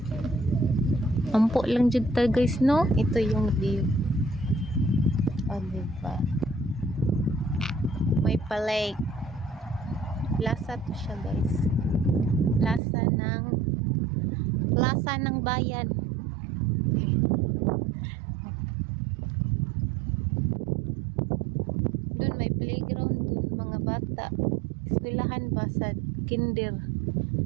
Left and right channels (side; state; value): left; drops out; at 12.8 s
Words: Ampo lang dyan tayo, guys, no? Ito yung view. O, diba? May palake. Plaza to siya, guys. Plaza ng bayan. Doon may playground doon, mga bata. Eskwelahan ba sa kinder.